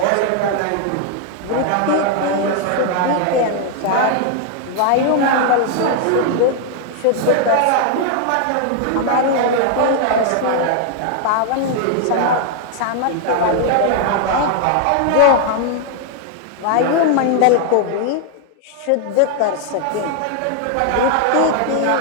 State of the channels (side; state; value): both; different; correlation 0.00